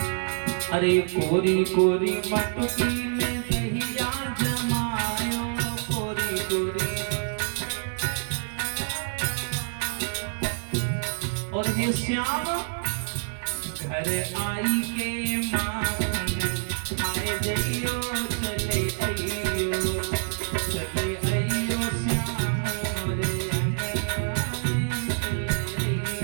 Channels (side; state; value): left; silent; digital silence